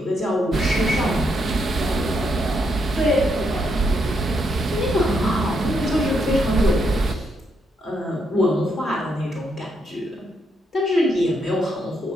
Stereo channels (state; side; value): normal; both; correlation 0.78